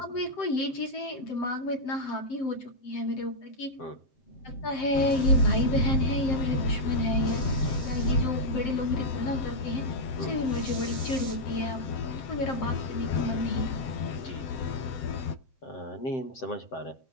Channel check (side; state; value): right; late; 7.7 ms